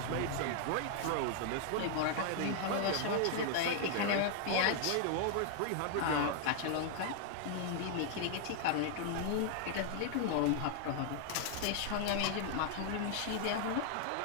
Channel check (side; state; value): both; different; correlation 0.00